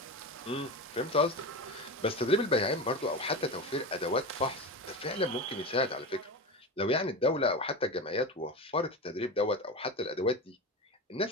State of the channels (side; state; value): both; normal; correlation 0.24